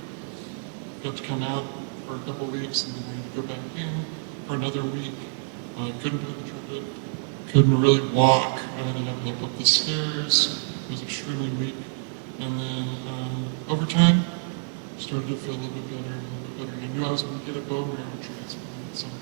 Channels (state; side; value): silent; left; digital silence